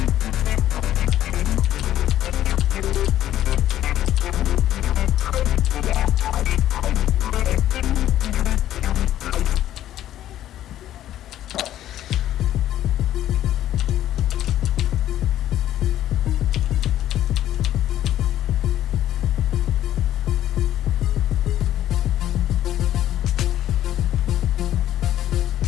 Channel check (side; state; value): right; quieter; 12.4 dB